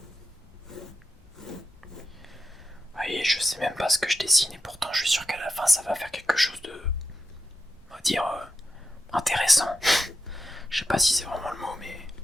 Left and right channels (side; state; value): both; normal; correlation 0.88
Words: Voyez, je sais même pas ce que je dessine et pourtant je suis sûr qu'à la fin ça va faire quelque chose de, on va dire, intéressant. Je sais pas si c'est vraiment le mot, mais